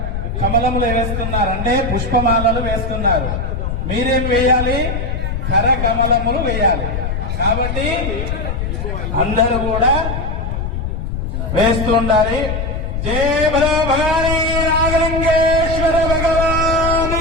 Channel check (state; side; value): noise; left; rumble, 3 dB below the sound